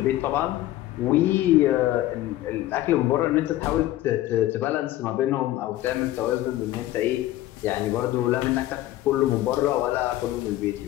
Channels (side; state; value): right; quieter; 15.1 dB